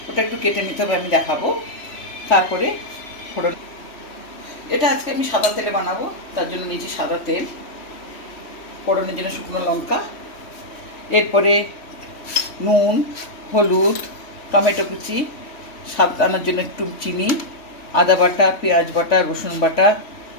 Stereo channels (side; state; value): right; late; 3.1 ms